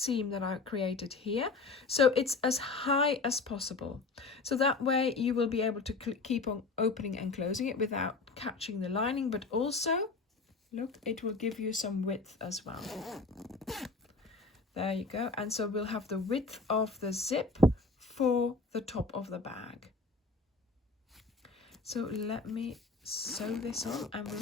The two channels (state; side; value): quieter; right; 3.9 dB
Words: that I created here, so it's as high as possible, so that way you will be able to keep on opening and closing it without catching the lining, but also look, it will give you some width as well. There you go. And so we'll have the width of the zip for the top of the bag. So let me sew this on and we'll